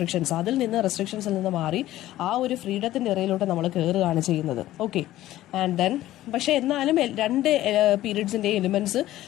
റെസ്ട്രിക്ഷൻസിൽ നിന്ന് മാറി ആ ഒരു ഫ്രീഡത്തിൻ്റെ ഇറയിലോട്ട് നമ്മൾ കയറുകയാണ് ചെയ്യുന്നത്. ഓക്കെ, ആൻഡ് ദെൻ പക്ഷേ എന്നാലും രണ്ട് പീരീഡ്സിൻ്റെ എലിമെന്റ്സ്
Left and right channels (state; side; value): quieter; right; 14.8 dB